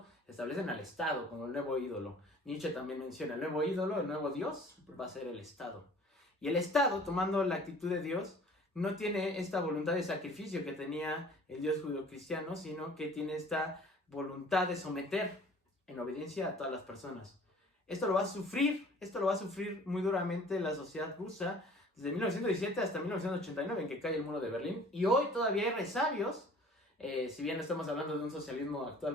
establecen al Estado como el nuevo ídolo. Nietzsche también menciona el nuevo ídolo, el nuevo Dios, va a ser el Estado. Y el Estado, tomando la actitud de Dios, no tiene esta voluntad de sacrificio que tenía el Dios judeocristiano, sino que tiene esta voluntad de someter en obediencia a todas las personas. Esto lo va a sufrir muy duramente la sociedad rusa, desde 1917 hasta 1989, en que cae el muro de Berlín. Y hoy todavía hay resabios, si bien no estamos hablando de un socialismo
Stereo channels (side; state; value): both; normal; correlation 0.50